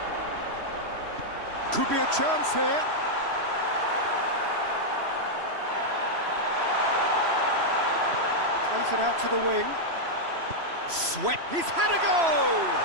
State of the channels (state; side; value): late; left; 3.0 ms